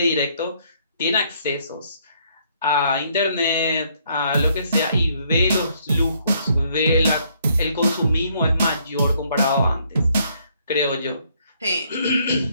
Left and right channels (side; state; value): both; inverted; correlation -0.68